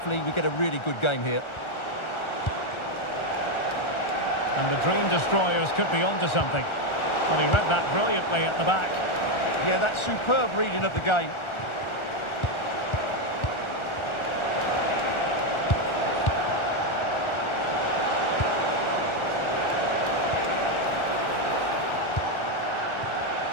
we get a really good game here. And the Dream Destroyers could be onto something. Well, he read that brilliantly at the back. Yeah, that's superb reading of the game.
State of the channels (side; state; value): right; late; 1.4 ms